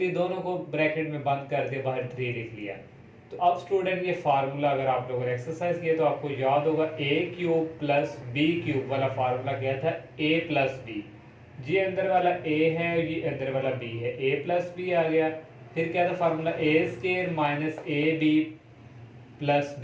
दोनों को ब्रैकेट में बंद कर दिया, बाहर 3 लिख लिया। तो अब स्टूडेंट ये फार्मूला अगर आप लोगों ने एक्सरसाइज किया तो आपको याद होगा a cube plus b cube वाला फार्मूला क्या था, a प्लस b। ये अंदर वाला a है, ये अंदर वाला b है, a प्लस b आ गया। फिर क्या था formula a square minus a b plus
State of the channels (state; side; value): identical; both; correlation 1.00